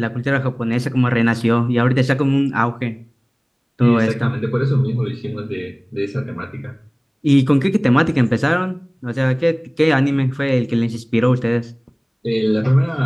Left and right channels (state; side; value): identical; both; correlation 1.00